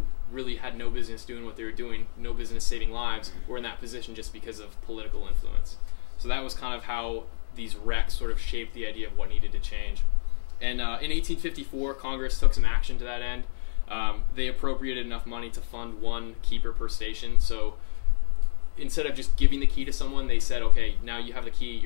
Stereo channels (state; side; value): silent; right; digital silence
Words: really had no business doing what they were doing, no business saving lives, were in that position just because of political influence. So that was kind of how these wrecks sort of shaped the idea of what needed to change. And in 1854, Congress took some action to that end. They appropriated enough money to fund one keeper per station. So instead of just giving the key to someone, they said, okay, now you have the key,